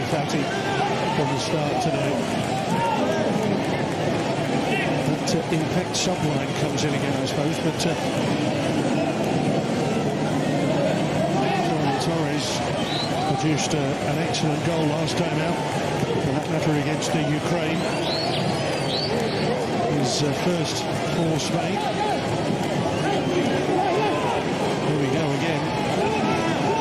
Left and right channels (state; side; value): identical; both; correlation 1.00